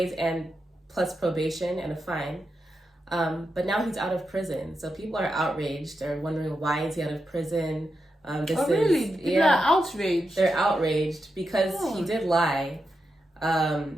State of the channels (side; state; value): both; normal; correlation 0.87